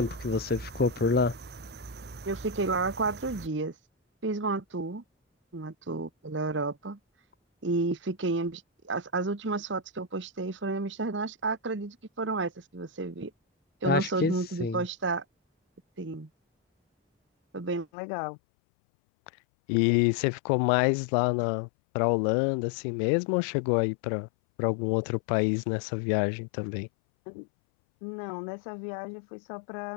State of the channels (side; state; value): right; drops out; at 17.9 s